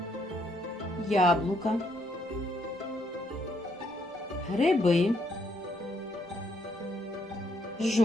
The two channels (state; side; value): normal; both; correlation 0.72